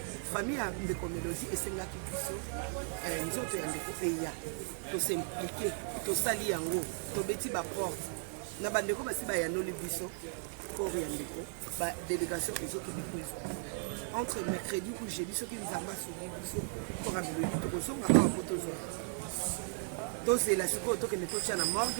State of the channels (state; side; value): silent; left; 54 dB below the other